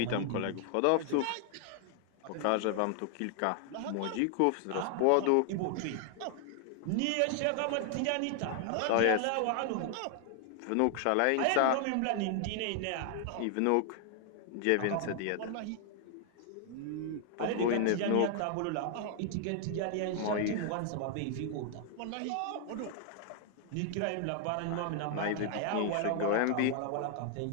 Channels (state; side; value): different; both; correlation 0.00